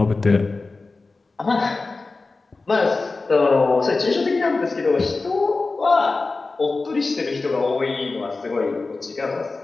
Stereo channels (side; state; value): right; quieter; 3.7 dB